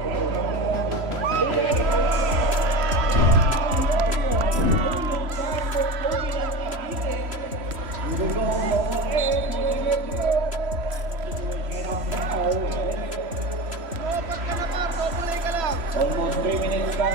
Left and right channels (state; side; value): late; left; 3.0 ms